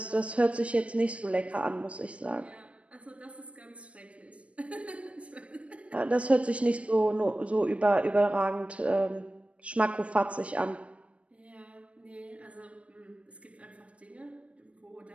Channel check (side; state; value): left; late; 0.063 ms